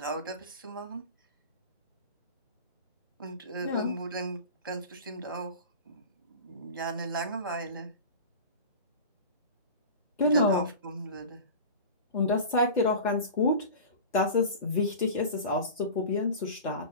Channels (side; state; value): both; inverted; correlation -0.34